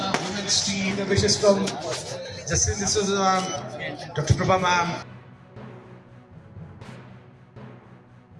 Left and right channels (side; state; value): both; identical; correlation 1.00